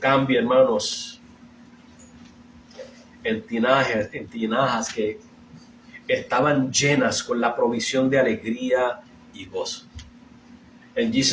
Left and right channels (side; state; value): both; identical; correlation 1.00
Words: cambia, hermanos, en tinajas que estaban llenas con la provisión de alegría y gozo. And